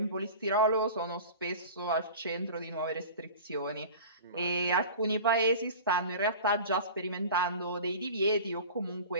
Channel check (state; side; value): inverted; both; correlation -0.37